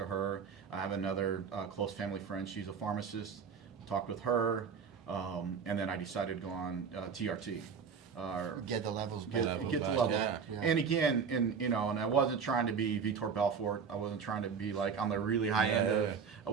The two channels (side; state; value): left; quieter; 6.3 dB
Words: her. I have another close family friend, she's a pharmacist, talked with her, and then I decided to go on TRT. Get the levels back. Get the level. Yeah. And again, and I wasn't trying to be Vitor Belfort. I wasn't trying to be like on the really high end of. I